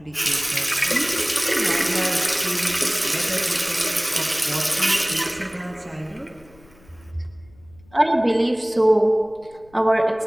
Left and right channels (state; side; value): noise; left; rumble, 27 dB below the sound